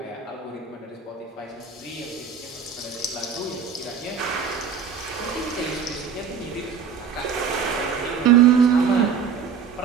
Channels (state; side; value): quieter; left; 6.7 dB